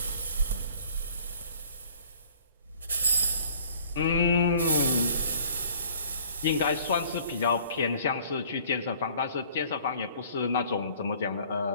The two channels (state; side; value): inverted; both; correlation -0.54